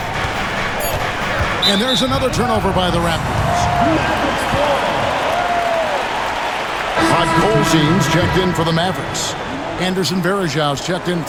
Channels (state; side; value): identical; both; correlation 1.00